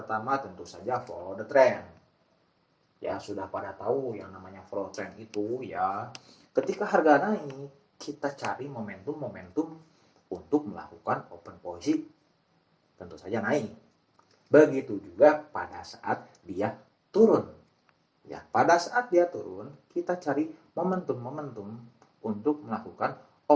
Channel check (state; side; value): identical; both; correlation 1.00